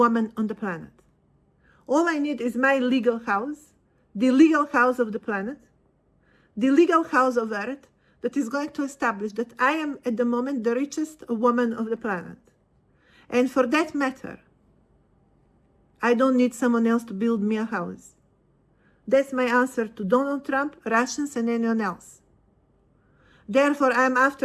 on the planet. All I need is my legal house, the legal house of the planet, the legal house of Earth, that is going to establish that I am at the moment the richest woman of the planet. And for that matter, I don't need someone else to build me a house. That's my answer to Donald Trump, Russians, and anyone else. Therefore, I'm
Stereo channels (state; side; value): identical; both; correlation 1.00